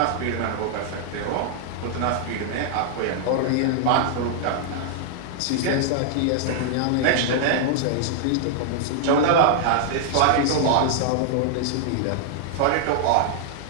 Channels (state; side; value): different; both; correlation -0.01